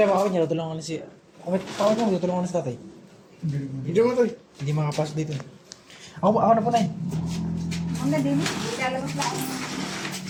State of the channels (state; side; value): identical; both; correlation 1.00